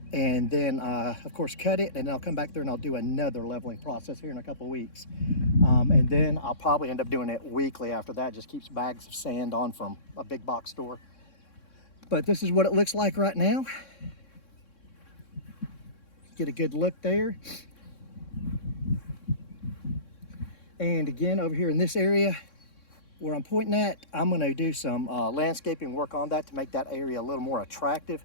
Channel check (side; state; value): right; late; 3.6 ms